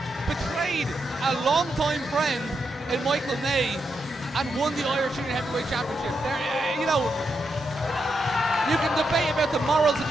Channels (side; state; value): both; normal; correlation 0.83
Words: betrayed a long-time friend in Michael May, and won the Irish Junior Heavyweight Championship. You can debate about the morals and